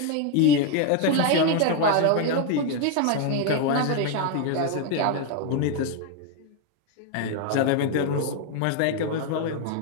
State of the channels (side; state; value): both; different; correlation 0.01